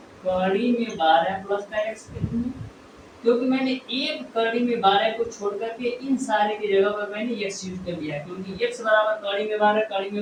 कड़ी में 12 प्लस का x के रूप में, क्योंकि मैंने एक कड़ी में 12 को छोड़ करके इन सारे की जगह पर मैंने x यूज कर लिया, क्योंकि x बराबर कड़ी में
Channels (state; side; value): identical; both; correlation 1.00